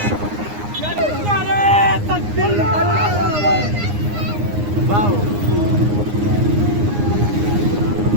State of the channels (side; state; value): left; late; 9.7 ms